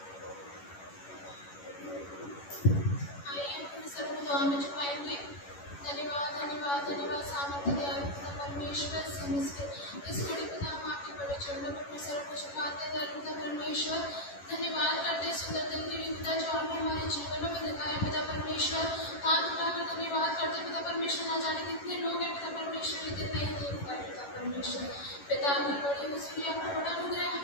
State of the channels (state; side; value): late; right; 11 ms